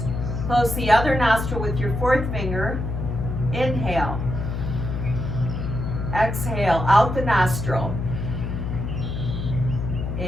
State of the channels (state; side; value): noise; left; hum, 3 dB below the sound